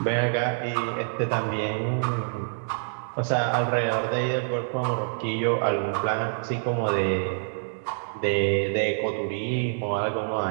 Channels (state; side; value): silent; left; digital silence